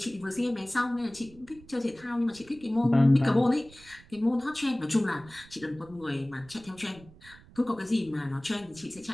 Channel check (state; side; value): noise; right; rumble, 23 dB below the sound